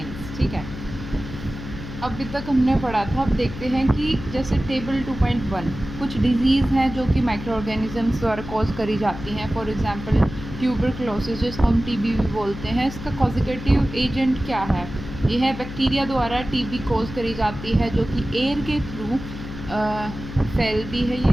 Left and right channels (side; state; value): left; noise; hum, 10 dB below the sound